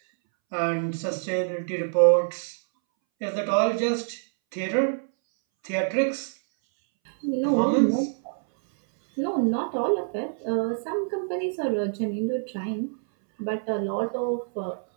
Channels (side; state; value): left; silent; 61 dB below the other